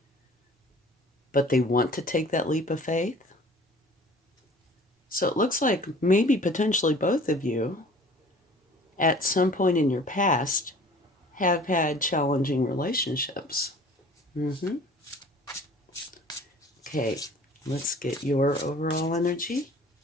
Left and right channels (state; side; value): normal; both; correlation 0.48